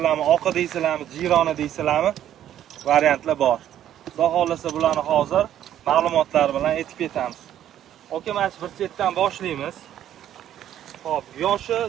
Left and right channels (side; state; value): left; quieter; 11.2 dB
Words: oqi deysizlarmi, jironi deysizlarmi? Variantlar bor. Xudo xolasa bularni hozir ma'lumotlar bilan aytib ketamiz. Oka, mana bir chetdan boshlaymiz. Xo'p, yoshi,